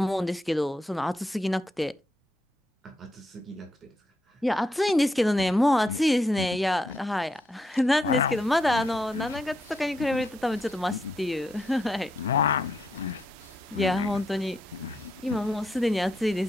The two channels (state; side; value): normal; both; correlation 0.80